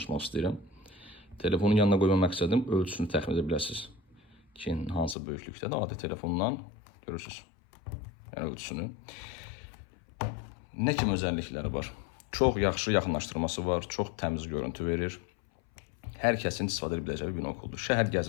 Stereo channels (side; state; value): right; drops out; at 5.2 s